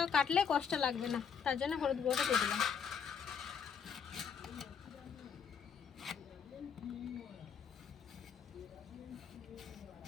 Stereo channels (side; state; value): right; quieter; 7.0 dB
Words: কাটলে কষ্ট লাগবে না, তার জন্য হলুদ গুঁড়োটা দিয়ে দিলাম।